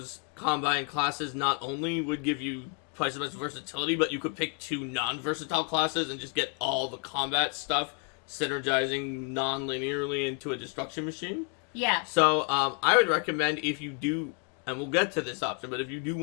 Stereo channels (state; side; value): quieter; right; 35.1 dB